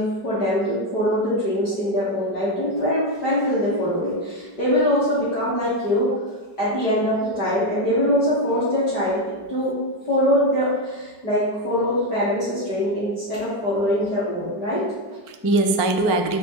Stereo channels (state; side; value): late; right; 4.4 ms